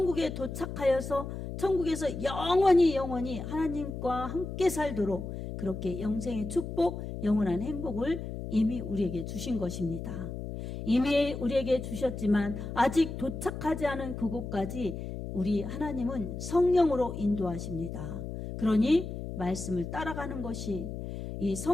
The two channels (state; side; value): noise; left; hum, 7 dB below the sound